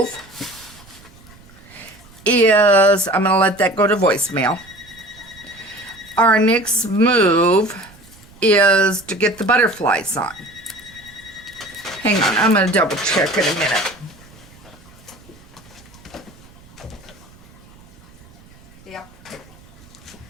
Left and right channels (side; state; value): right; noise; rumble, 24 dB below the sound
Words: is, I'm going to let that go to voicemail. Our next move is to get the butterflies on. Hang on, I'm going to double check in a minute. Yep.